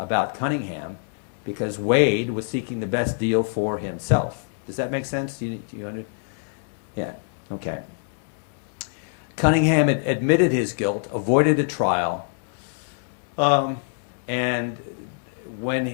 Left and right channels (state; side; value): silent; right; digital silence